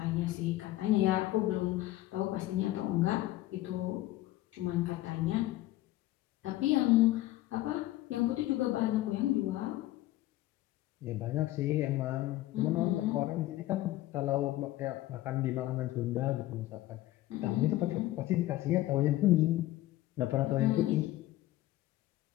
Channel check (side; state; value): right; quieter; 16.0 dB